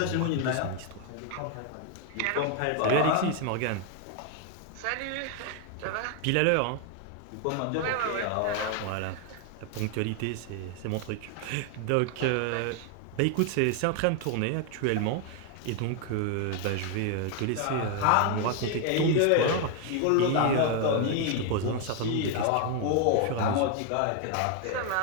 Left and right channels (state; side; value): different; both; correlation 0.00